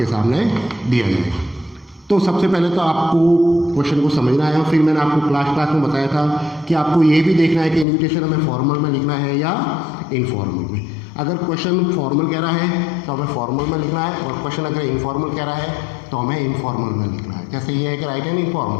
सामने दिया जाएगा। तो सबसे पहले तो आपको क्वेश्चन को समझना है। फिर मैंने आपको क्लास में बताया था कि आपको ये भी देखना है कि इनविटेशन हमें फॉर्मल में लिखना है या इनफॉर्मल में। अगर क्वेश्चन फॉर्मल कह रहा है तो हमें फॉर्मल में लिखना है, और क्वेश्चन अगर इनफॉर्मल कह रहा है तो हमें इनफॉर्मल में लिखना है। जैसे ये है कि राइट एंड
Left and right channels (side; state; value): right; drops out; at 7.9 s